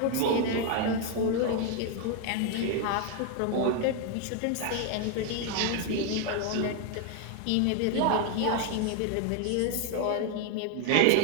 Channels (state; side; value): different; both; correlation 0.01